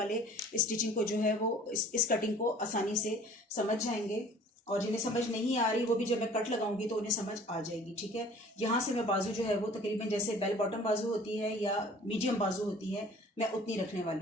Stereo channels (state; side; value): normal; both; correlation 0.50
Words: स्टिचिंग को जो है वो इस कटिंग को आसानी से समझ जाएंगे और जिन्हें समझ नहीं आ रही वो भी जब मैं कट लगाऊंगी तो उन्हें समझ आ जाएगी, ठीक है। यहाँ से मैं बाजू जो है वो तकरीबन जैसे बेल बॉटम बाजू होती है या मीडियम बाजू होती है, मैं उतनी रखने